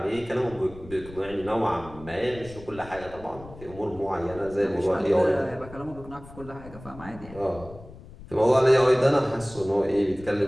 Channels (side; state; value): left; noise; rumble, 17 dB below the sound